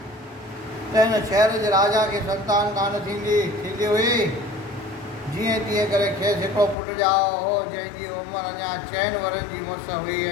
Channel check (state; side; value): drops out; right; at 6.8 s